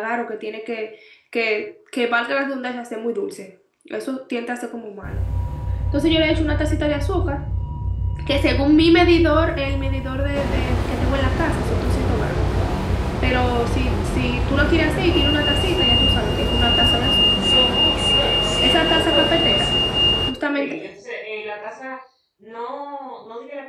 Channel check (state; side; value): identical; both; correlation 1.00